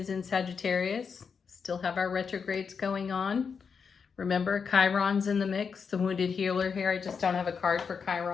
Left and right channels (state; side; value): quieter; right; 6.0 dB